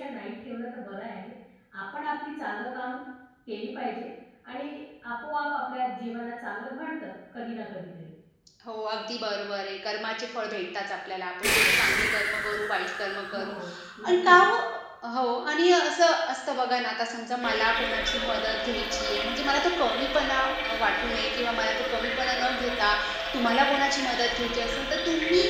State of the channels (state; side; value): identical; both; correlation 1.00